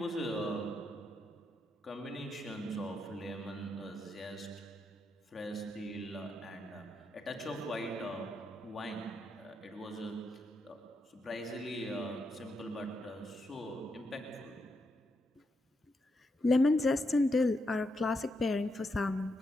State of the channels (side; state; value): both; normal; correlation 0.82